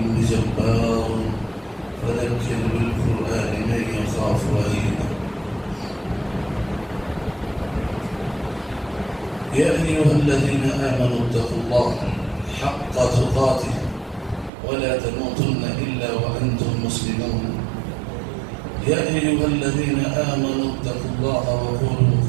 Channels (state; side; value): drops out; left; at 14.5 s